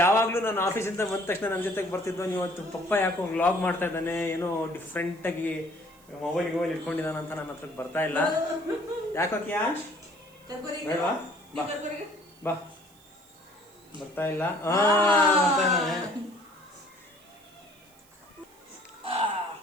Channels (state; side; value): noise; right; hiss, 28 dB below the sound